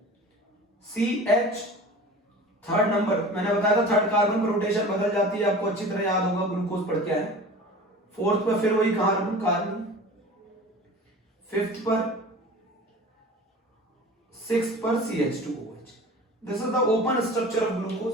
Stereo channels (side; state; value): both; normal; correlation 0.39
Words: CH third number. मैंने बताया था थर्ड कार्बन पर रोटेशन बदल जाती है, आपको अच्छी तरह याद होगा, ग्लूकोज पढ़ के आए। फोर्थ पर फिर वही कार्बन, फिफ्थ पर, सिक्स्थ पर CH2OH। This is the open structure of glucose,